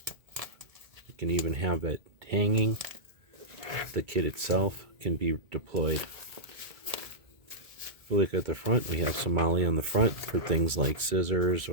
you can even have it hanging. The kit itself can be deployed. If you look at the front, we have some MOLLE on the front for things like scissors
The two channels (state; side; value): late; left; 2.2 ms